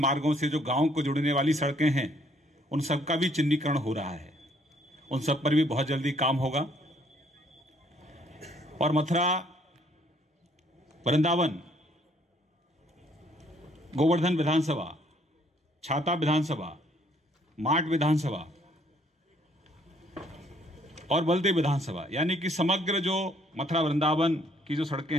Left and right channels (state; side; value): normal; both; correlation 0.65